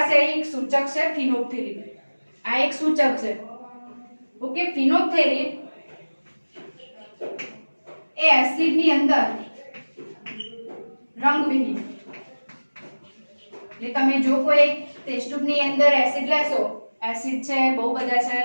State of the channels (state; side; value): inverted; both; correlation -1.00